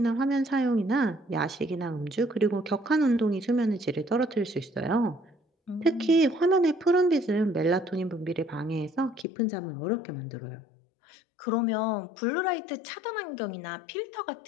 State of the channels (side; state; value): right; drops out; at 9.2 s